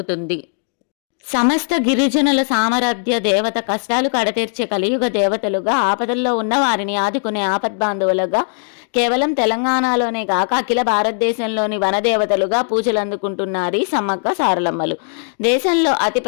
సమస్త గిరిజనుల సామర్థ్య దేవత, కష్టాలు కడతీర్చే కలియుగ దేవతలుగా, ఆపదల్లో ఉన్న వారిని ఆదుకునే ఆపద్బాంధవులుగా, కేవలం తెలంగాణలోనే కాక అఖిల భారతదేశంలోని వనదేవతలుగా పూజలు అందుకుంటున్నారు ఈ సమ్మక్క సారలమ్మలు. దేశంలో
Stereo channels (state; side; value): silent; right; digital silence